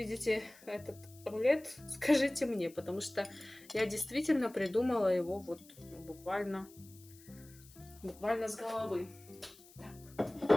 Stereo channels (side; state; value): left; noise; hiss, 23 dB below the sound